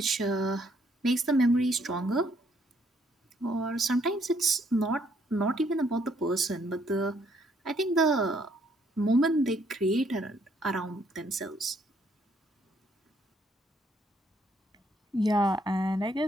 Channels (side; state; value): both; normal; correlation 0.69